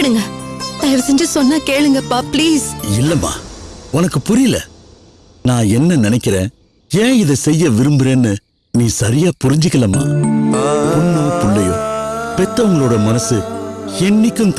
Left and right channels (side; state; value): both; identical; correlation 1.00